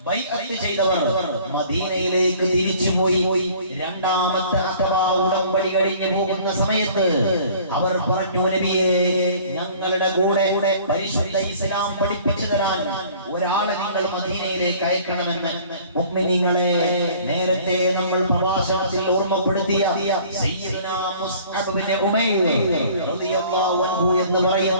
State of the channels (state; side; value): inverted; both; correlation -0.51